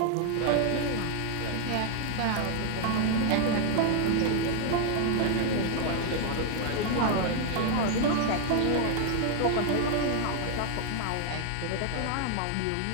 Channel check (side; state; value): both; different; correlation 0.00